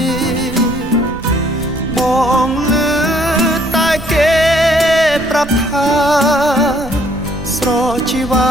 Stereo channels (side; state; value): right; noise; rumble, 15 dB below the sound